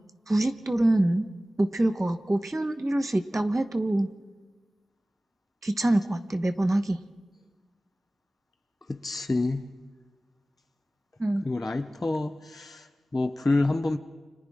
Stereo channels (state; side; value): normal; both; correlation 0.97